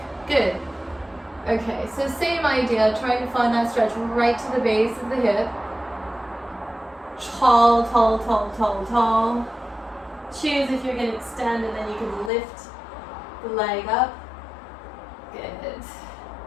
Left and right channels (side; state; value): right; drops out; at 12.3 s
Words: Good. Okay, so same idea, trying to find that stretch right to the base of the hip. Tall, tall, tall, tall, tall. Choose if you're going to extend, and then you can lift the leg up. Good.